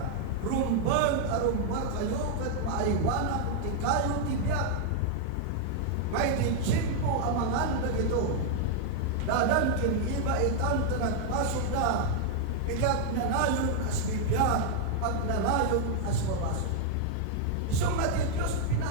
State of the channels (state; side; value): different; both; correlation -0.01